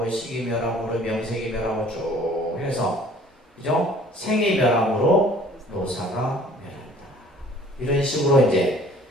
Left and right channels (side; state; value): both; normal; correlation 0.53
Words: 식이 멸함으로 명색이 멸하고 쭉 해서 그죠? 생이 멸함으로 노사가 멸한다. 이런 식으로 이제